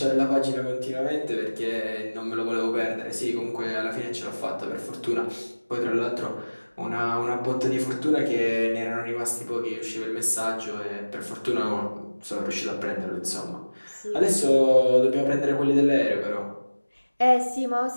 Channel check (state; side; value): inverted; both; correlation -1.00